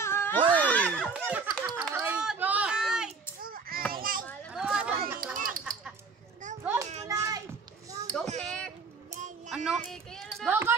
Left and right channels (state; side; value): quieter; left; 4.8 dB